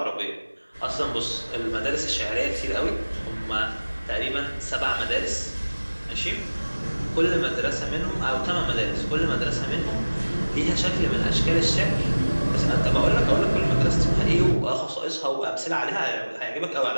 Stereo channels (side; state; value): both; inverted; correlation -1.00